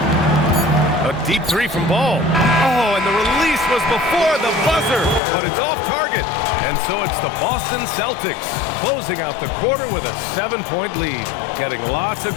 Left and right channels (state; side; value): drops out; right; at 5.2 s